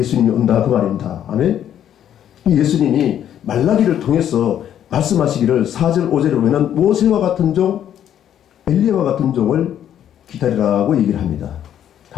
온다 그 말입니다. 아멘. 이 예수님이 말라기를 통해서 말씀하시기를 4절 5절에 보면은 모세와 같은 종, 엘리야와 같은 종을 기다리라고 얘기를 합니다.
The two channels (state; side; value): quieter; right; 10.3 dB